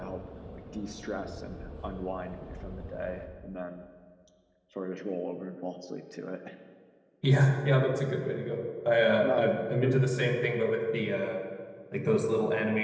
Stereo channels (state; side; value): identical; both; correlation 1.00